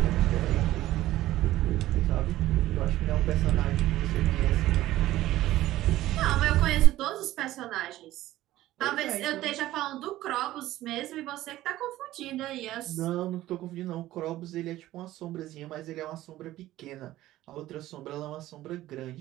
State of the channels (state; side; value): quieter; left; 15.2 dB